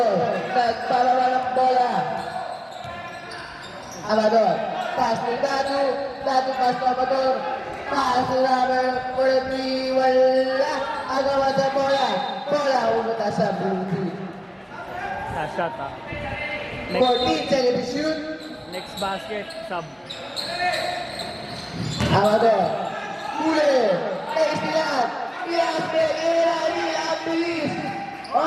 Nagpalawa ng bola. Amador. Pass to Datu. Datu pass to Amador. Pass to number 43. Wala. Agawan sa bola. Bola pumunta sa blue team. Last shot, ha. 14 seconds to shoot. Next basket, sub. Amador. Huli. Istilan. Ilang bilis.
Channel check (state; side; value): identical; both; correlation 1.00